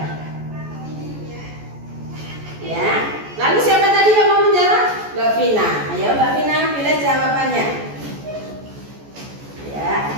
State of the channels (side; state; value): left; late; 14 ms